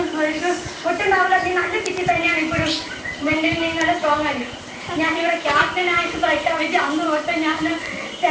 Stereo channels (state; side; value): identical; both; correlation 1.00